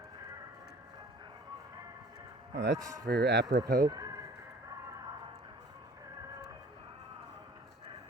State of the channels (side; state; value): both; normal; correlation 0.49